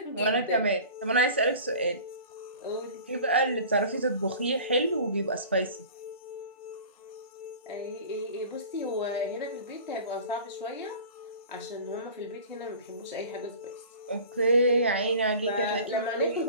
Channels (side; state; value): both; inverted; correlation -0.41